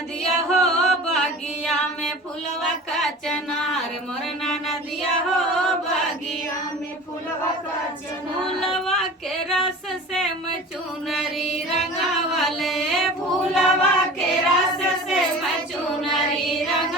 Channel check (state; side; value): normal; both; correlation 0.38